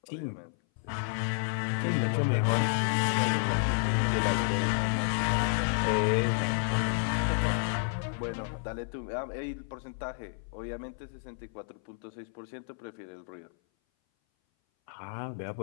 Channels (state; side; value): silent; right; 57 dB below the other